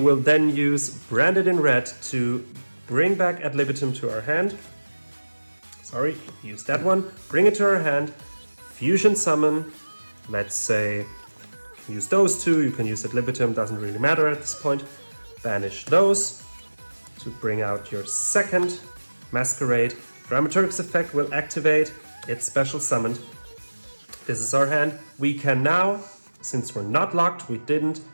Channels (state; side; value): inverted; both; correlation -1.00